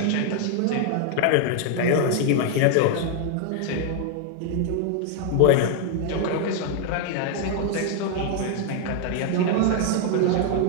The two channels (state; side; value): different; both; correlation 0.00